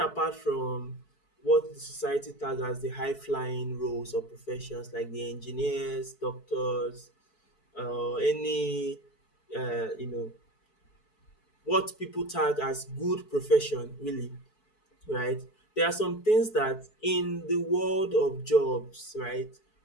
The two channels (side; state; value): right; late; 4.6 ms